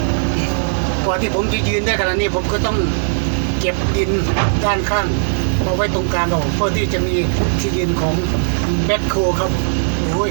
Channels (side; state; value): left; silent; digital silence